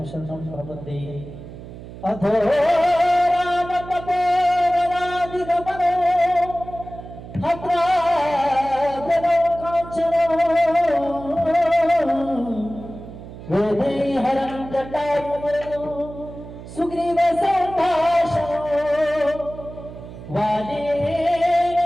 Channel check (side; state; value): right; noise; hum, 14 dB below the sound